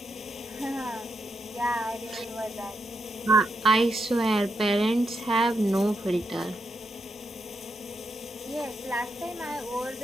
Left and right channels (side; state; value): both; normal; correlation 0.83